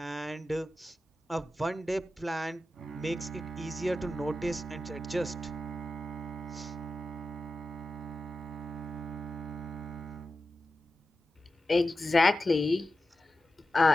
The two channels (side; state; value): both; normal; correlation 0.92